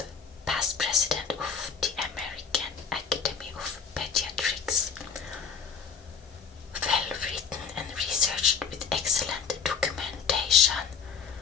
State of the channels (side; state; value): right; quieter; 6.3 dB